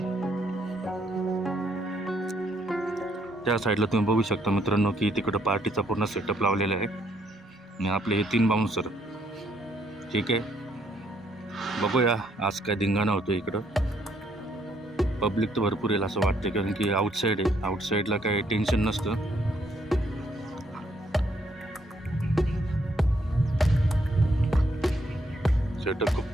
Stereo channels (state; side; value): normal; both; correlation 0.71